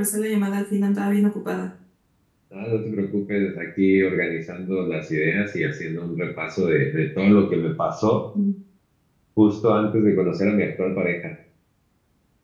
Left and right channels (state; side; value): identical; both; correlation 1.00